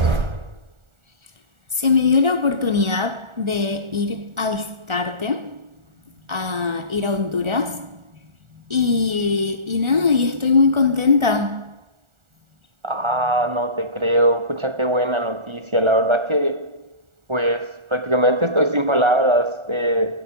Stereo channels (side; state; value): left; late; 1.4 ms